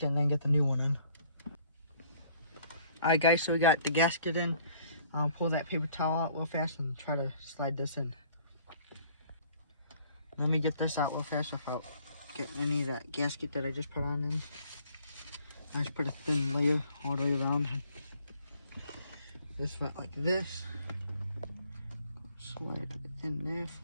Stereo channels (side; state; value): both; inverted; correlation -0.59